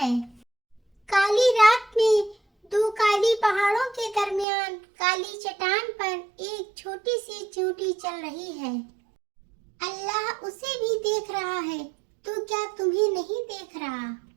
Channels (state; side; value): drops out; left; at 4.5 s